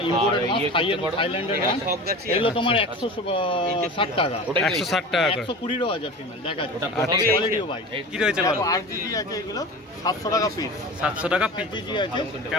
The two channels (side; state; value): both; normal; correlation 0.34